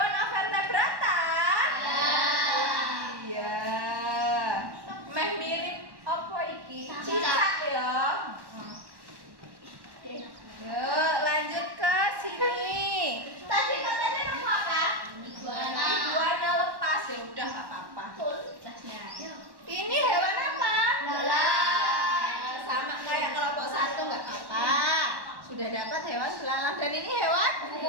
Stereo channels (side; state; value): left; late; 1.1 ms